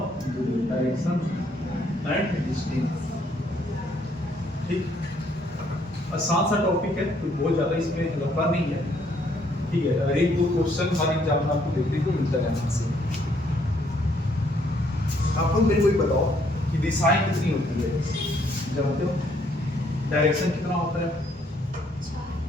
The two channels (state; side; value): normal; both; correlation 0.68